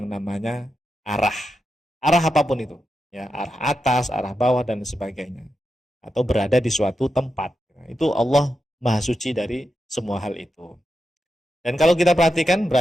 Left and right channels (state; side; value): normal; both; correlation 0.88